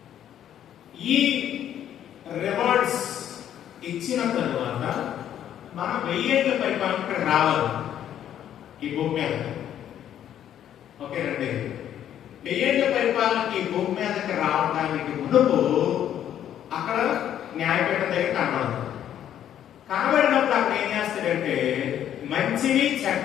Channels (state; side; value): quieter; right; 10.5 dB